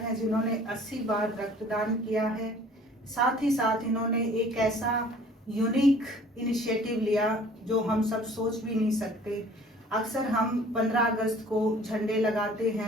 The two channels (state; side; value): normal; both; correlation 0.52